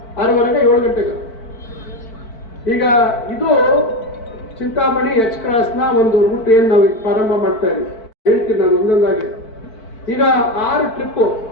6:30 7 ಗಂಟೆಗೆ. ಈಗ ಇದು ಚಿಂತಾಮಣಿ H ಕ್ರಾಸ್ನ ಒಂದು ರೂಟ್ ಏನ್ ನಾವು ಪ್ರಾರಂಭ ಮಾಡ್ತಾ ಇದ್ದೀವಿ. ಹೇಳ್ತೀನಿ ನಾನು ಒಂದೊಂದಾಗಿ. ಈಗ 6 ಟ್ರಿಪ್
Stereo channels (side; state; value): right; late; 4.5 ms